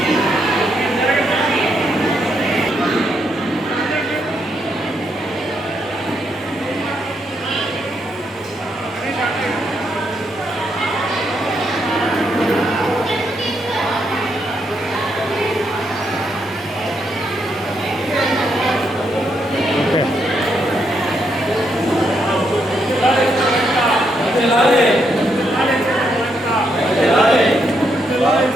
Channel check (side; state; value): both; normal; correlation 0.78